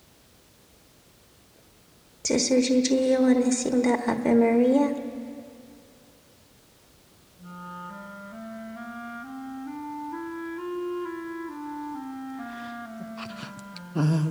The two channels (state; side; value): identical; both; correlation 1.00